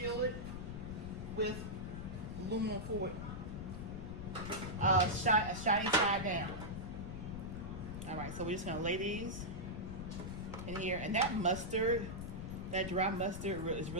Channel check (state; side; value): noise; left; rumble, 7 dB below the sound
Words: it with aluminum foil, shiny side down. All right, so we're just gonna lay these in here, and that mustard, that dry mustard, is